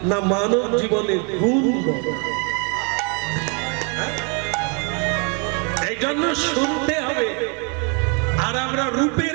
না মানব জীবনের গুণ বড়? এই জন্য শুনতে হবে। আর আমরা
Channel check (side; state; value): left; quieter; 35.4 dB